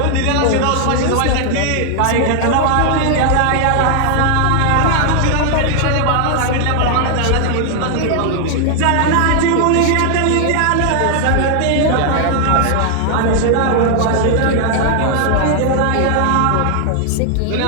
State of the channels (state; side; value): different; both; correlation 0.00